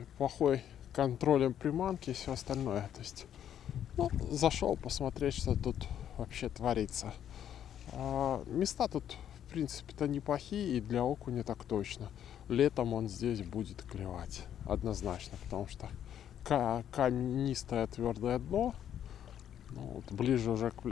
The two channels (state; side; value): quieter; right; 10.0 dB